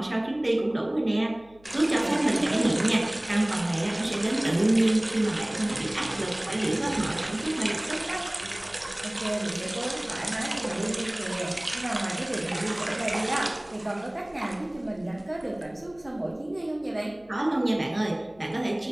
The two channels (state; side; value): noise; left; hum, 27 dB below the sound